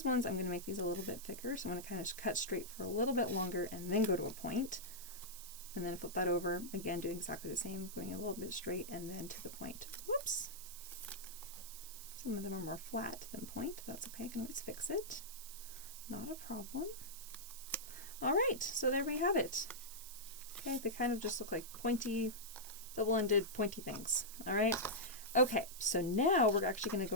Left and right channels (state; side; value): noise; right; hiss, 12 dB below the sound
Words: ones, I'm going to make these a little bit thicker. So I'm going to kind of cut straight for a little bit longer and then go to a point. And then flip that over. Again, doing exactly the same, going a little bit straight and then to the point. Whoops. Some of them are more flat than point. That's okay. I can always fix it. Not a problem. All right. So there we have it. Okay. They kind of just look like pointy, double-ended, pointy things. All right. Okay, so now we're actually going to